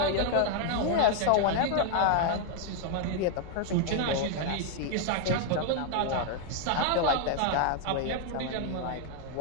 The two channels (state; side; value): different; both; correlation 0.00